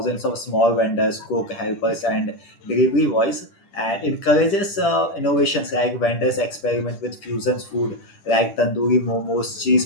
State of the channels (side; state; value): right; late; 10 ms